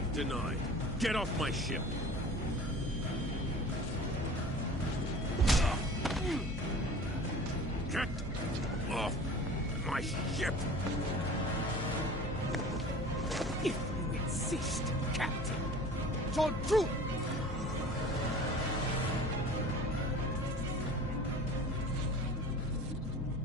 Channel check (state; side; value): normal; both; correlation 0.41